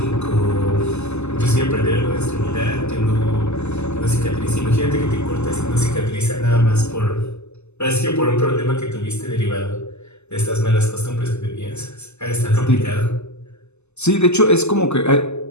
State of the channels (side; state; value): right; late; 0.82 ms